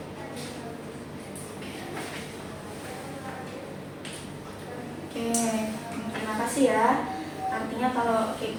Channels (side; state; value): both; identical; correlation 1.00